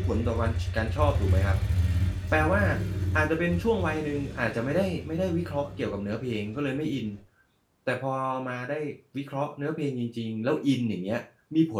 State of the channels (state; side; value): identical; both; correlation 1.00